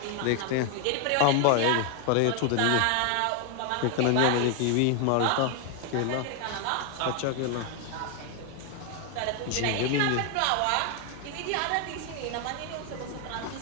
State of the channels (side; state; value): both; different; correlation 0.01